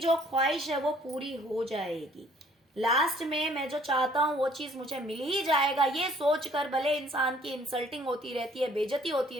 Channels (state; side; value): normal; both; correlation 0.59